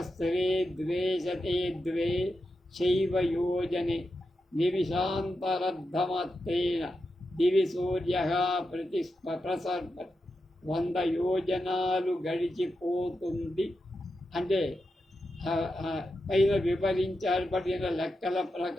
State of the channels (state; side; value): normal; both; correlation 0.88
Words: ద్వేషతే ద్వే చైవ యోజనే నిమిషాంతరద్ధమత్తేన దివి సూర్య ప్రసర్ప 100 యోజనాలు గడిచిపోతుంది. అంటే పైన వివరించబడిన లెక్కల